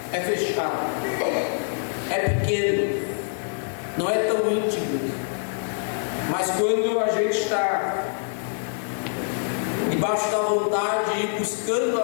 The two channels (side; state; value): right; silent; digital silence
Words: é fechado, é pequeno, não é tão íntimo. Mas quando a gente está debaixo da vontade e buscando